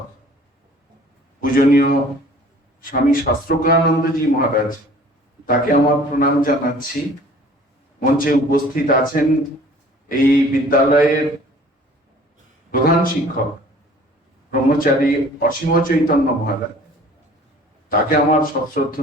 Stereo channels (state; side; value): normal; both; correlation 0.50